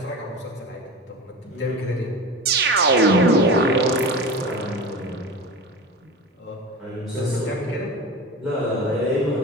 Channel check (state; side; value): normal; both; correlation 0.30